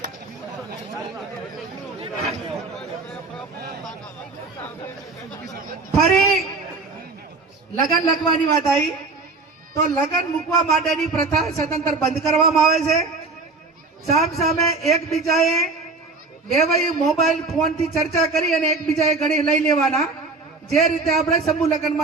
ફરી લગ્ન લખવાની વાત આવી તો લગ્ન મૂકવા માટેની પ્રથા સદંતર બંધ કરવામાં આવે છે. સામ સામે એકબીજાએ બેવાઈ મોબાઈલ ફોન થી ચર્ચા કરી અને એકબીજાએ ઘડી લઈ લેવાના. જે રીતે આપણે સમૂહ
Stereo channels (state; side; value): quieter; left; 3.8 dB